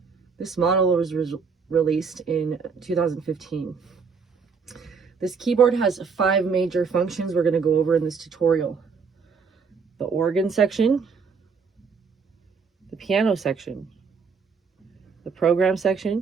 This model was released in 2015. This keyboard has 5 major functions we're going to go over in this tutorial. The organ section, the piano section, the program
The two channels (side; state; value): left; quieter; 5.5 dB